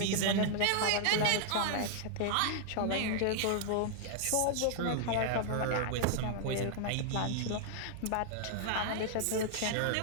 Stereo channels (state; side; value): different; both; correlation -0.01